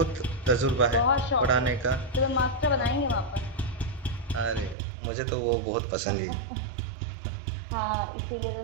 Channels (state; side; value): drops out; left; at 4.8 s